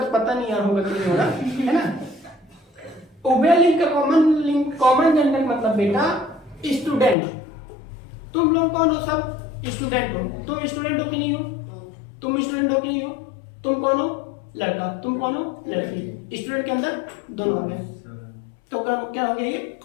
पता नहीं यार होगा कि नहीं होगा, है ना। उभयलिंग का कॉमन जेंडर मतलब बेटा स्टूडेंट। तुम लोग कौन हो? सब स्टूडेंट हो। तुम स्टूडेंट हो कि नहीं हो? तुम स्टूडेंट हो कि नहीं हो? तुम कौन हो? लड़का। तुम कौन हो? लड़की। स्टूडेंट के अंदर दोनों आ गए, तो क्या हो गया ये?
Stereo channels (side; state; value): right; drops out; at 7.2 s